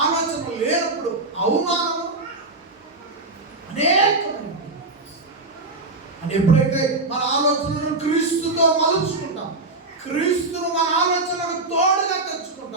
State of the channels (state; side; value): quieter; left; 3.2 dB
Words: ఆలోచనలు లేనప్పుడు అవమానము అనేకమైన. అని ఎప్పుడైతే మన ఆలోచనలను క్రీస్తుతో మలుచుకుంటాం, క్రీస్తును మన ఆలోచనలకు తోడుగా